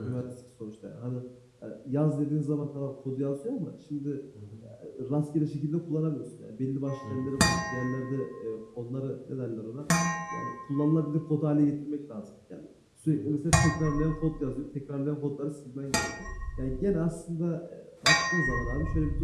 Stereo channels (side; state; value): both; identical; correlation 1.00